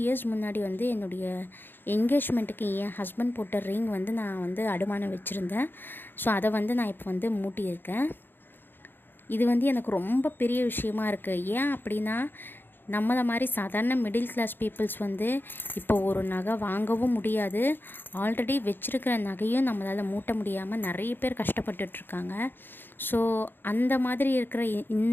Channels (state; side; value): late; right; 0.098 ms